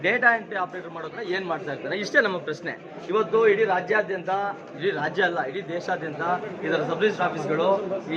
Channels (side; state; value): both; identical; correlation 1.00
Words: ಡೇಟಾ ಎಂಟ್ರಿ ಆಪರೇಟರ್ ಮಾಡೋದ್ರೆ ಏನ್ ಮಾಡ್ತಾ ಇರ್ತಾರೆ? ಇಷ್ಟೇ ನಮ್ಮ ಪ್ರಶ್ನೆ. ಇವತ್ತು ಇಡೀ ರಾಜ್ಯಾದ್ಯಂತ, ಇಡೀ ರಾಜ್ಯ ಅಲ್ಲ, ಇಡೀ ದೇಶಾದ್ಯಂತ ಇದರ ಸಬ್ ರಿಜಿಸ್ಟರ್ ಆಫೀಸ್ಗಳು